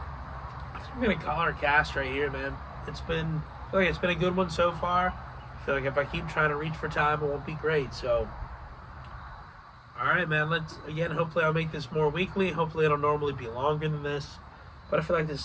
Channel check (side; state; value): both; identical; correlation 1.00